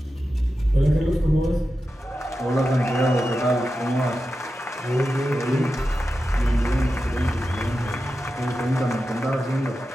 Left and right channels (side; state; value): both; normal; correlation 0.91